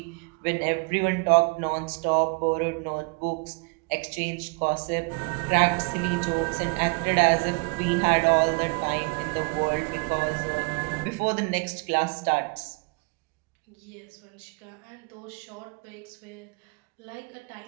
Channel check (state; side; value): quieter; left; 31.9 dB